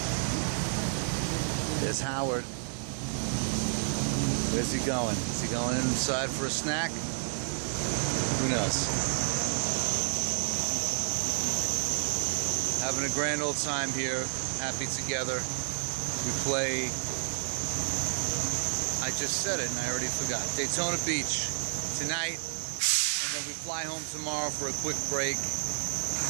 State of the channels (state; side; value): silent; left; 58 dB below the other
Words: There's Howard. Where's he going? Is he going inside for a snack? Who knows? Having a grand old time here. Happy Together. We play, I just said it and I already forgot, Daytona Beach tonight, and then we fly home tomorrow for a quick break,